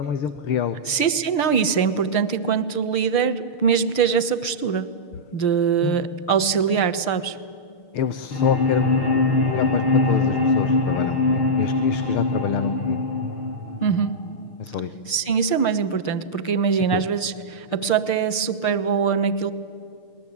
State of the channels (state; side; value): late; right; 6.6 ms